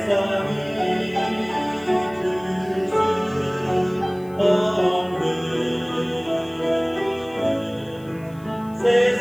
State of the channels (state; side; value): noise; left; hiss, 28 dB below the sound